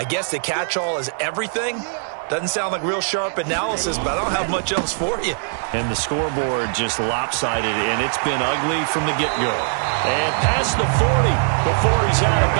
guess the catch-all is everything. Doesn't sound like real sharp analysis, but I don't have much else for you. And the scoreboard just lopsided, and it's been ugly from the get-go. And past the 40 before he's out of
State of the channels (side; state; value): left; silent; digital silence